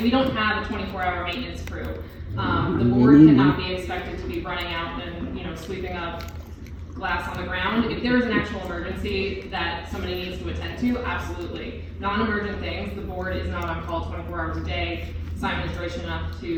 We don't have a 24-hour maintenance crew. The board cannot be expected to be running out and, sweeping up glass on the ground. If there is an actual emergency that somebody needs to attend to, absolutely. Non-emergent things, the board is not on call 24 hours a day. Simon is gracious enough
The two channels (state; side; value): identical; both; correlation 1.00